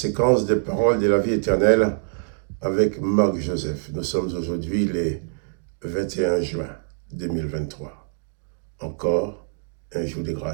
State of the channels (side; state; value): left; silent; digital silence